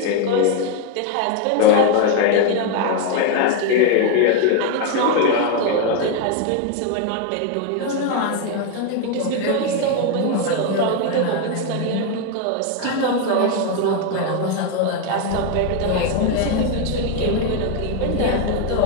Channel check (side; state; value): both; different; correlation 0.02